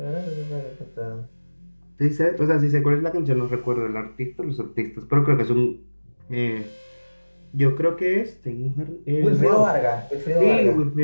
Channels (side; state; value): both; inverted; correlation -1.00